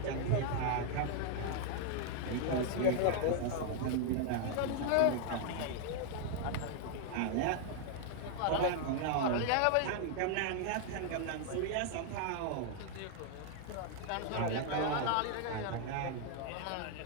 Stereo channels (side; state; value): both; different; correlation 0.00